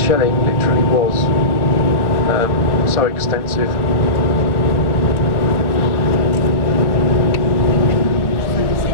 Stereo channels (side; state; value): right; late; 1.1 ms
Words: literally was so extensive.